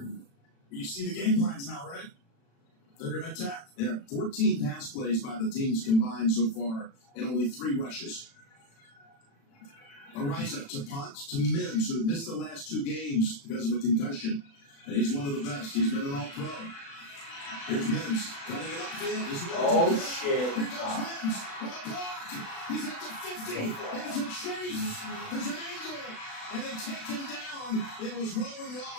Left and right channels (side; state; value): right; late; 36 ms